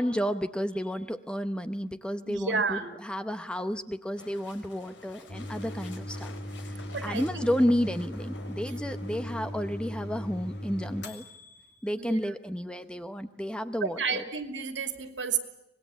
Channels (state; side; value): normal; both; correlation 0.78